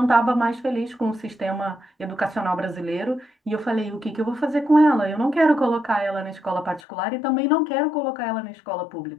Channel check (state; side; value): drops out; right; at 6.8 s